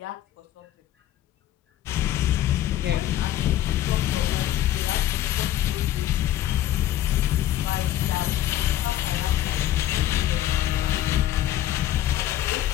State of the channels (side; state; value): right; quieter; 12.8 dB